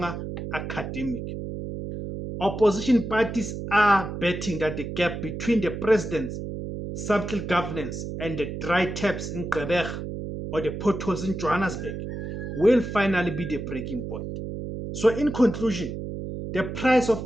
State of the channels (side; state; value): right; noise; hum, 6 dB below the sound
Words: academic. Opposition parties are betting that the gap between the president's subtle governance and the dry taps in Quebec or the potholes in Johannesburg will finally be the breaking point. So, in conclusion, the price